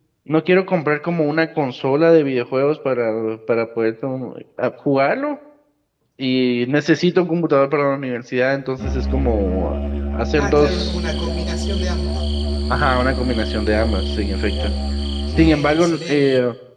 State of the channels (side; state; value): both; identical; correlation 1.00